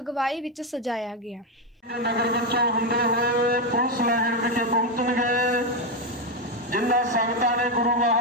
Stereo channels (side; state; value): both; normal; correlation 0.06